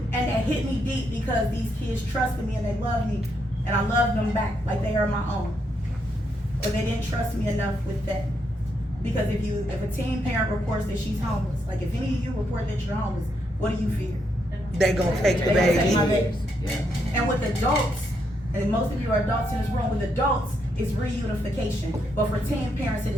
they that hit me deep because these kids trusted me and they loved me, and I loved them back like they are my own. But they didn't trust me enough with that. Because if a teen parent reports that she's homeless, like if any of you report that you're homeless, what do you fear? They gonna take the They gonna take my baby. baby. And with adults, and most of you are adults in this room, with adults, it's reunification. But for teen parents, it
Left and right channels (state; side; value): normal; both; correlation 0.78